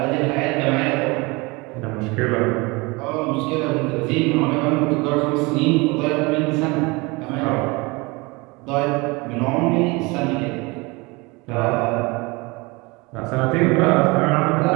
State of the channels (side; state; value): left; quieter; 25.6 dB